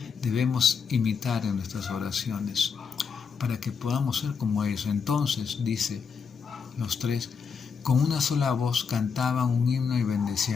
debemos imitar en nuestras oraciones para que podamos ser como ellos. Entonces, dice, los 3, con una sola voz cantaban un himno y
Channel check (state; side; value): quieter; right; 5.9 dB